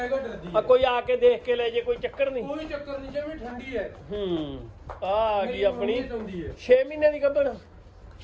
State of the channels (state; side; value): identical; both; correlation 1.00